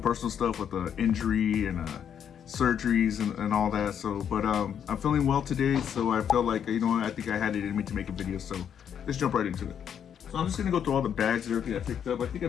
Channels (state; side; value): quieter; right; 8.5 dB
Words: stuff with the injury and surgeries and all that. So, but I'm feeling well today, so I felt like, you know what, I think I had it in me to make a video. So let's jump right into it. So I'm just gonna go through all the bags and everything I picked up. I think I